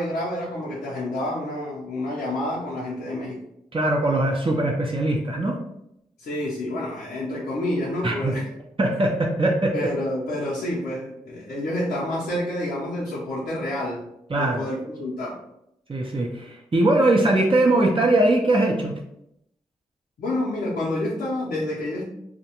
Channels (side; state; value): both; normal; correlation 0.73